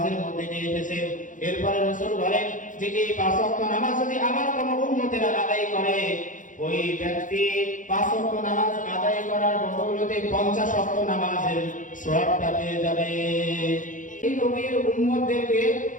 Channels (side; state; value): right; late; 0.37 ms